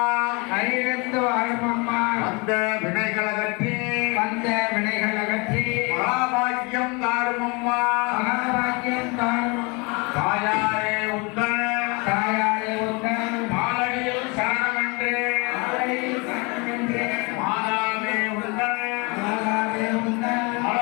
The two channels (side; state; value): right; quieter; 29.1 dB